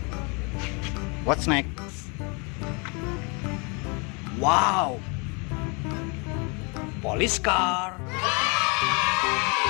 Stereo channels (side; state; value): right; quieter; 32.1 dB